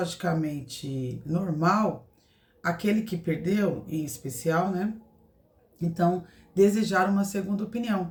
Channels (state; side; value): identical; both; correlation 1.00